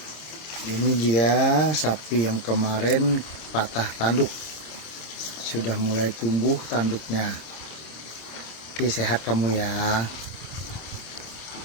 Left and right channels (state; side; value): late; right; 26 ms